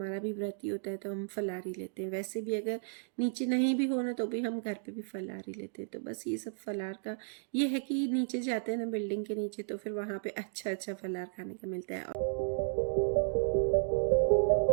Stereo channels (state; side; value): silent; left; digital silence